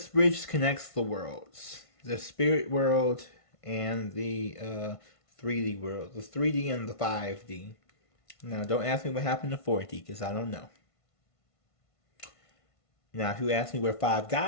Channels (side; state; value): right; late; 1.5 ms